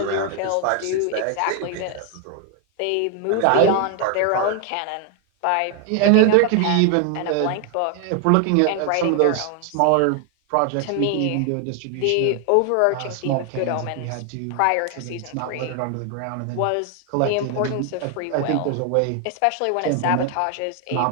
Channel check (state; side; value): different; both; correlation 0.00